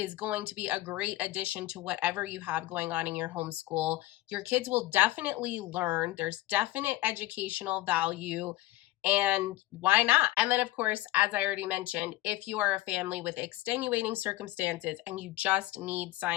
going to be a great addition to whatever you have going on in your homeschool. Your kids will definitely learn. There's definite educational value. And why not? And then, of course, as I already mentioned, if you are a family with extenuating circumstances and you just need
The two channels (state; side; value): quieter; right; 16.5 dB